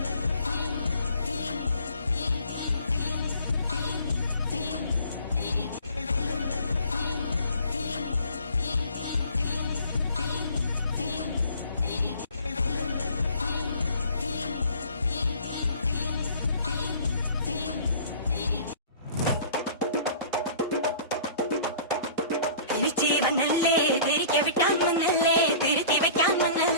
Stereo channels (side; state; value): both; inverted; correlation -0.49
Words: തിരിച്ചീവനല്ലേ തിരികെ വിട്ടാൻ മണ്ണല്ലേ തിരുത്തി വയ്ക്കാൻ